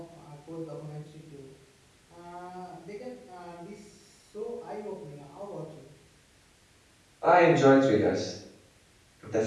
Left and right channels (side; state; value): both; identical; correlation 1.00